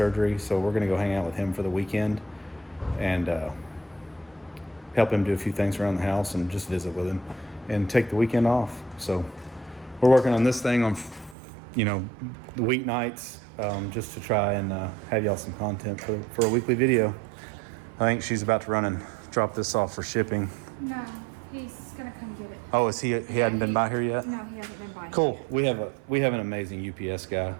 so we're gonna go hang out with him for the weekend and help him do a few things around the house and just visit with him and take the weekend off. So we're working on this thing on, you know, the weeknights, just to try and have y'all some content for a weekly video. I think she's about to run and drop this off for shipping. No, he's gonna come get it. Oh, is he hadn't been by here yet? No, he hasn't been by. Cool. We have an amazing UPS guy,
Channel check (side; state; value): left; drops out; at 11.4 s